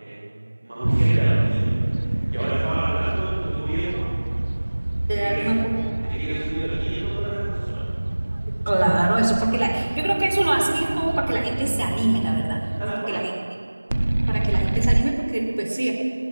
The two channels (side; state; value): both; inverted; correlation -1.00